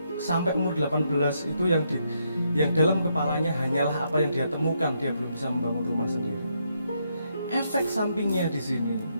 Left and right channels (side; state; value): both; inverted; correlation -0.77